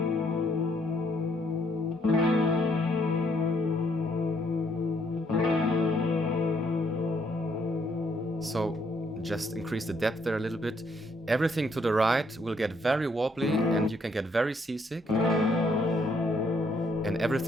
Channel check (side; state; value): both; normal; correlation 0.70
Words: So just increase the depth there a little bit. Everything to the right will get very wobbly and you can get very seasick. And